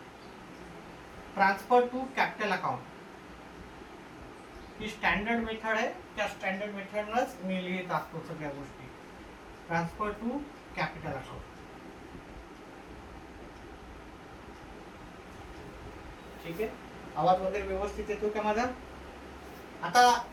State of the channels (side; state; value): both; identical; correlation 1.00